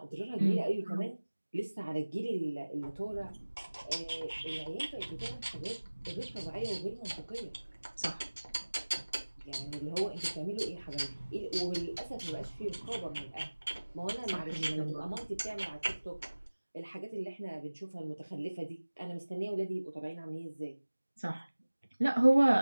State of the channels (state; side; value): inverted; both; correlation -1.00